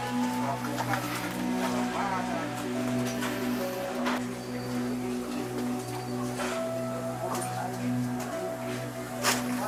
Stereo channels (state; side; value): identical; both; correlation 1.00